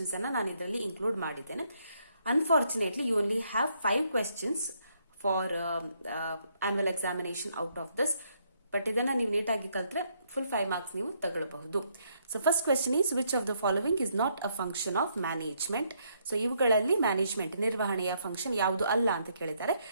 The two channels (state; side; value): inverted; both; correlation -0.73